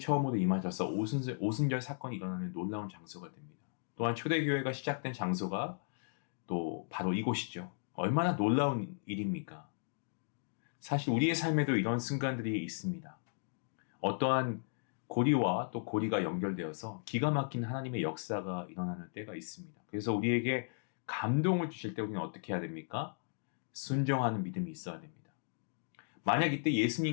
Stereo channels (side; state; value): right; silent; digital silence